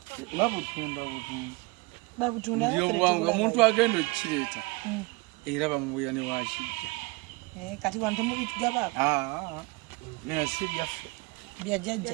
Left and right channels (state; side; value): quieter; left; 25.1 dB